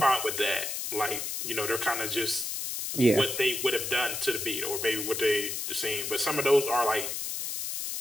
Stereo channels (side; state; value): left; noise; hiss, 4 dB below the sound